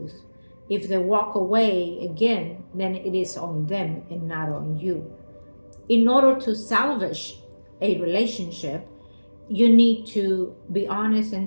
If they walk away again, then it is on them and not on you. In order to salvage a relationship, you need to be honest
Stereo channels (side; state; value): both; inverted; correlation -1.00